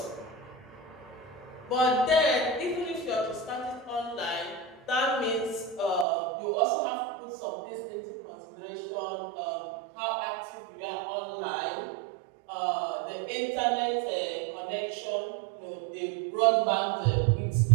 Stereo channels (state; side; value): drops out; left; at 6.1 s